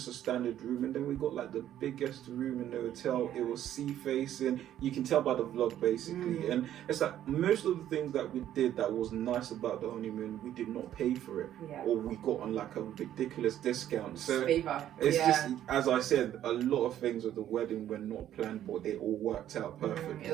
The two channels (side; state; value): left; quieter; 11.6 dB